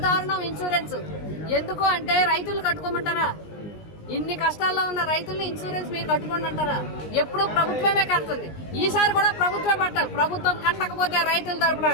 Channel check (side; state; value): right; late; 19 ms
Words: దారుణం. ఇన్సూరెన్స్ ఎందుకు అంటే రైతులు కట్టుకోమంటారా? ఇన్ని కష్టాల్లో ఉన్న రైతుల్ని ఇన్సూరెన్స్ మీరు కట్టుకోండి అంటారా? ఎప్పుడూ ప్రభుత్వమే కడుతుంది. ఈసారి కూడా ప్రభుత్వమే పట్టాలి. ప్రభుత్వం కట్టకపోతే రైతుల తరపున